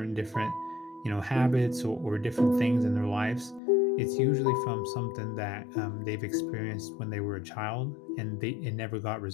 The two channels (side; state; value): right; drops out; at 3.6 s